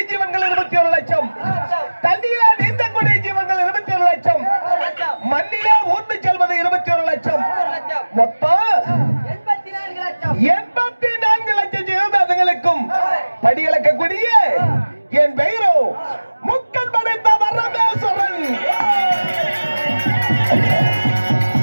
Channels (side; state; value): both; inverted; correlation -1.00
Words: ஜீவன்கள் 21 லட்சம் தண்ணியில நீந்தக்கூடிய ஜீவன்கள் 21 லட்சம் மண்ணிலே ஊர்ந்து செல்வது 21 லட்சம் மொத்தம் 84 லட்சம் ஜீவபாதங்களுக்கும் படியளக்கக்கூடிய என் பெயரோ முக்கன் படைத்த வரமேஸ்வரன்.